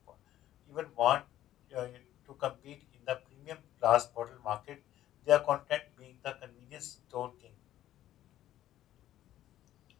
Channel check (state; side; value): quieter; right; 13.0 dB